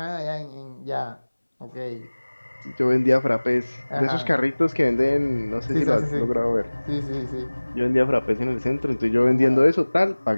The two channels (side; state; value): both; inverted; correlation -1.00